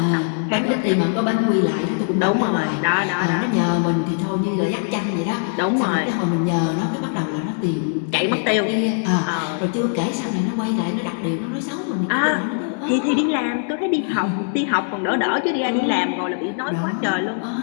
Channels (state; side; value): silent; right; 65 dB below the other